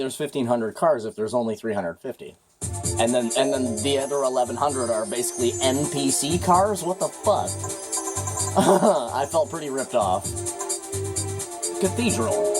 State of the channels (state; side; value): identical; both; correlation 1.00